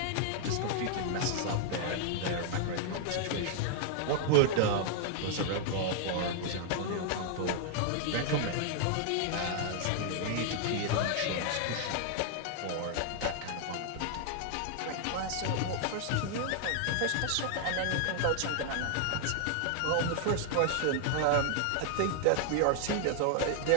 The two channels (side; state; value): both; different; correlation 0.00